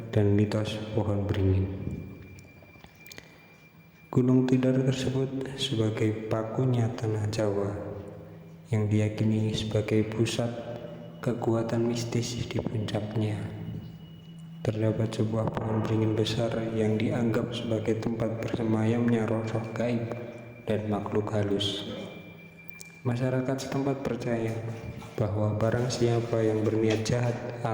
dan mitos pohon beringin. Gunung Tidar tersebut sebagai pakunya tanah Jawa yang diyakini sebagai pusat kekuatan mistis di puncaknya. Terdapat sebuah pohon beringin besar yang dianggap sebagai tempat bersemayamnya roh-roh gaib dan makhluk halus. Masyarakat setempat percaya bahwa barang siapa yang berniat jahat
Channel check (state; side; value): identical; both; correlation 1.00